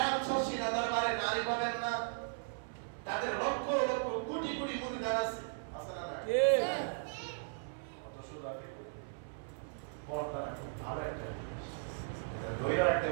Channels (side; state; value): left; silent; 53 dB below the other